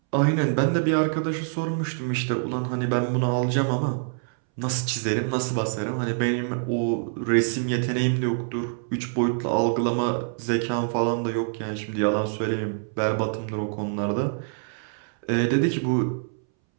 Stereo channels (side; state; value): left; silent; 61 dB below the other